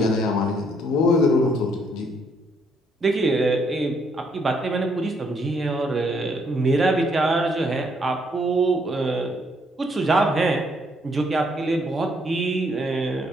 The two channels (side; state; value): both; normal; correlation 0.70